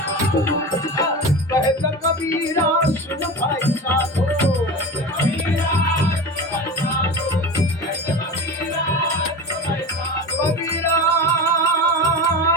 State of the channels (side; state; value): both; normal; correlation 0.28